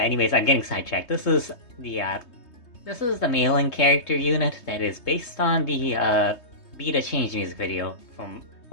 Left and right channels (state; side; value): late; right; 3.2 ms